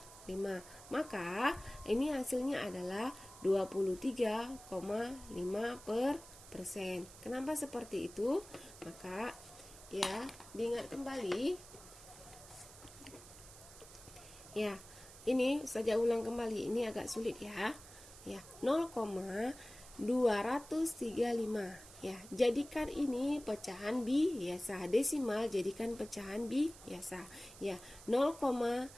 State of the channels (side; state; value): right; noise; hiss, 18 dB below the sound